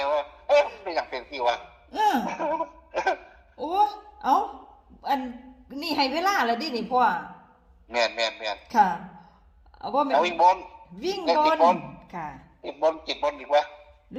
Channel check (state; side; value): identical; both; correlation 1.00